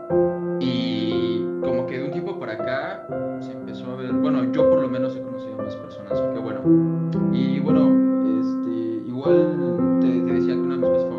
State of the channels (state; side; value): identical; both; correlation 1.00